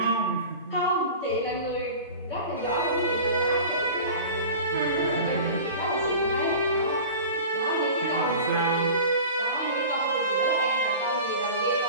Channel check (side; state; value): both; inverted; correlation -0.37